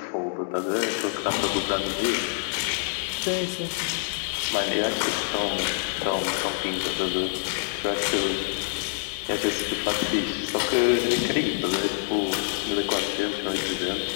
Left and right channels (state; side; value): silent; right; digital silence